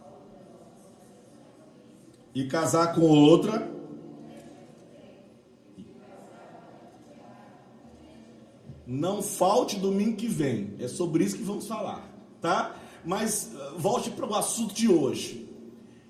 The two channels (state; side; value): identical; both; correlation 1.00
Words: e casar com outra, não falte domingo que vem. É sobre isso que vamos falar, tá? Mas volte para o assunto de hoje.